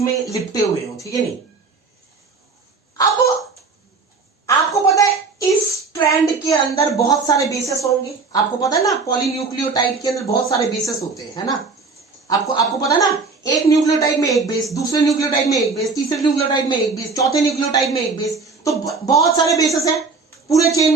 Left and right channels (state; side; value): quieter; left; 4.4 dB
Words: में लिपटे हुए हो, ठीक है नहीं? अब आपको पता है इस स्ट्रैंड के अंदर बहुत सारे बेसेस होंगे, आपको पता है ना? पॉलीन्यूक्लियोटाइड के अंदर बहुत सारे बेसेस होते हैं, है ना? आपको पता है ना? एक न्यूक्लियोटाइड में एक बेस, दूसरे न्यूक्लियोटाइड में एक बेस, तीसरे न्यूक्लियोटाइड में एक बेस, चौथे न्यूक्लियोटाइड में एक बेस। तो बहुत सारे बेसेस हैं पूरे चेन